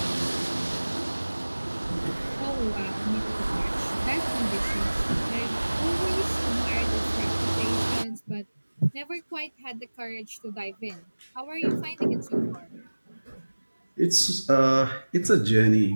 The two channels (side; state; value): both; inverted; correlation -1.00